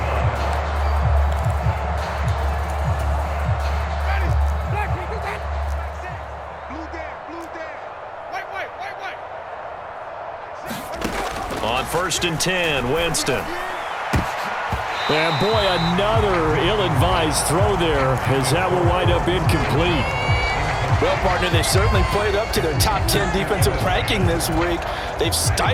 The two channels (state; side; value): identical; both; correlation 1.00